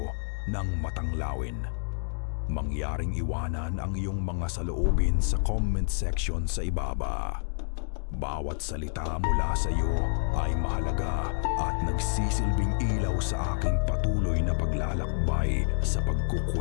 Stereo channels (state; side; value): silent; right; digital silence